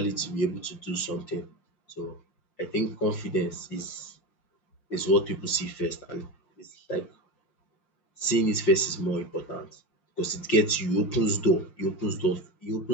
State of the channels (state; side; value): late; right; 5.7 ms